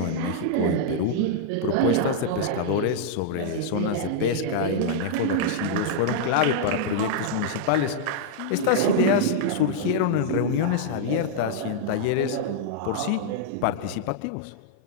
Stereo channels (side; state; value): both; different; correlation -0.02